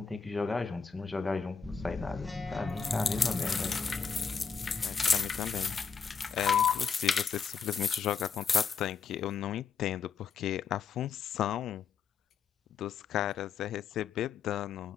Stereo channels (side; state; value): right; quieter; 6.0 dB